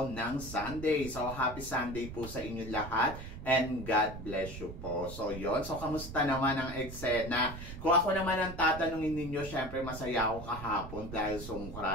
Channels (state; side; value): noise; right; rumble, 11 dB below the sound